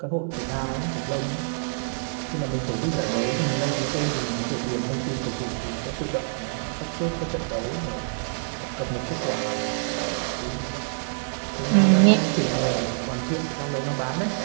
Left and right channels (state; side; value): silent; left; 59 dB below the other